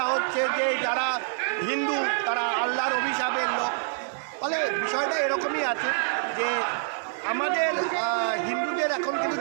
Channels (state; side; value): silent; left; 61 dB below the other